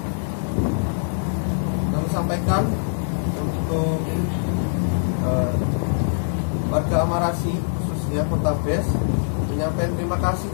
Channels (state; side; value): silent; right; digital silence